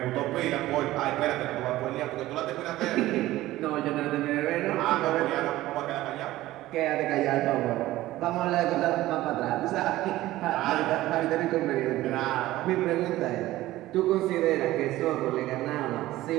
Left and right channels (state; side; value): quieter; left; 16.2 dB